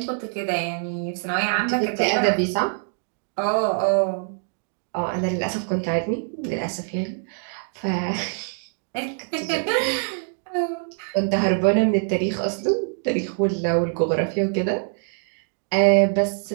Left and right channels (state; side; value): silent; left; 62 dB below the other